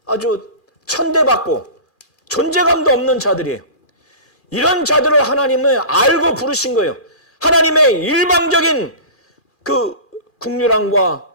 아주 천대받고 존재감도 없는 자들이에요. 이런 자들을 하나님은 알고 부르신 거예요. 하나님의 일방적인 그 국률함과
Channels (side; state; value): right; late; 2.4 ms